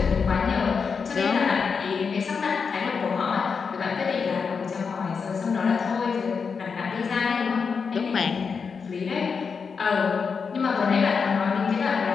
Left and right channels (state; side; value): quieter; right; 5.6 dB